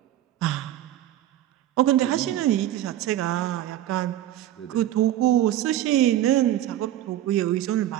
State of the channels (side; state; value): left; quieter; 12.8 dB